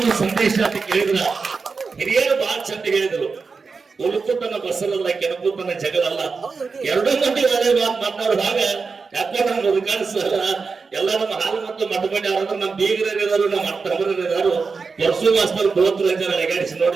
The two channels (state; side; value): quieter; left; 4.8 dB